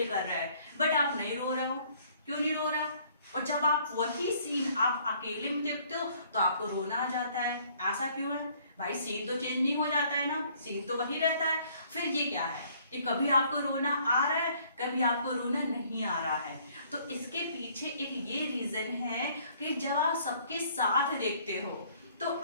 कर रहा है, बट आप नहीं रो रहे हो। क्यों नहीं रो रहा? और जब आप वही सीन आप अकेले में देखते हो तो आपको रोना आ जाता है। ऐसा क्यों है भाई? सीन तो चेंज नहीं हो जाता है ना, सीन तो वही रहता है। फिर ये क्या है कि कभी आपको रोना आ रहा है, कभी आपको रोना नहीं आ रहा है। तो इसके पीछे एक ये रीजन है कि जब आप सबके साथ देखते हो तो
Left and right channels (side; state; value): both; inverted; correlation -0.60